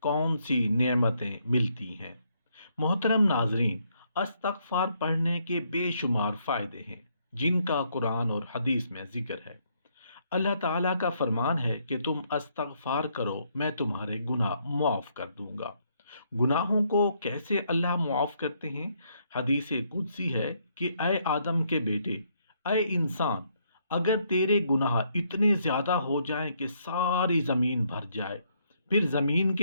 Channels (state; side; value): inverted; both; correlation -0.72